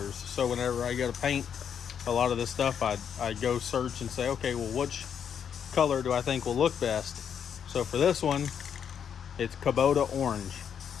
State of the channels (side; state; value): right; quieter; 7.9 dB